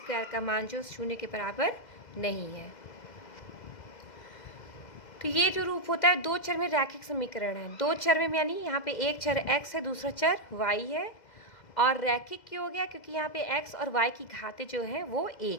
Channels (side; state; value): right; late; 2.0 ms